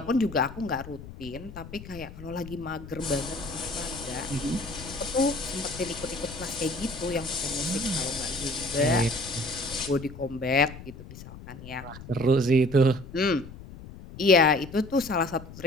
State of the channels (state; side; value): noise; left; rumble, 14 dB below the sound